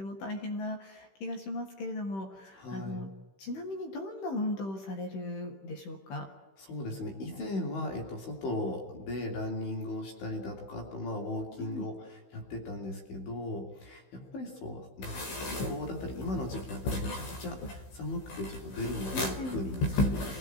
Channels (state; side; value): late; right; 16 ms